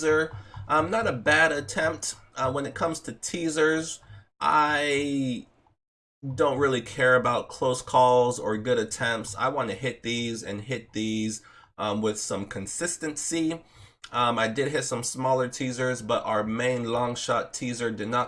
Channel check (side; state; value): both; identical; correlation 1.00